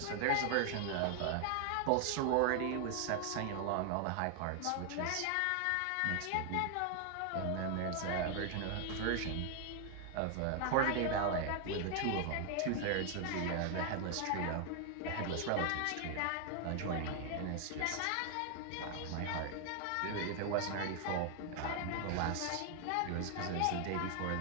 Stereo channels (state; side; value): different; both; correlation 0.00